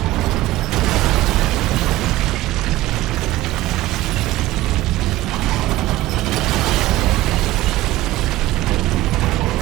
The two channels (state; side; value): quieter; left; 16.6 dB